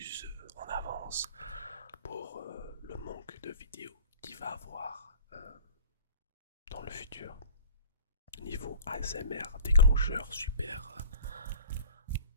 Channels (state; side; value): inverted; both; correlation -0.44